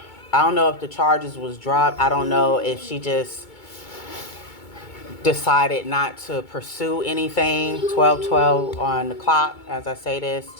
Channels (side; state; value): right; late; 2.2 ms